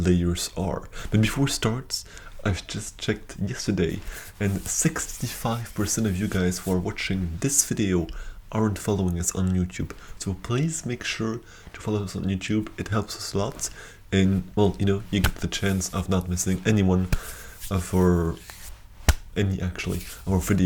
are. But before it starts, I've just checked yesterday, and 65% of you guys who are watching this video aren't following us on YouTube. So please make sure to follow us on YouTube. It helps us a lot, and well, you get the chance of not missing any one of our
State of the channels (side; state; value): both; identical; correlation 1.00